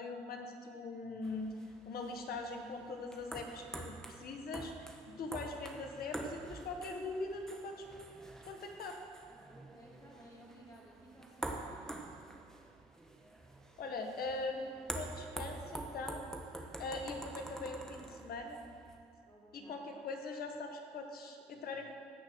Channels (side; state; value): both; normal; correlation 0.49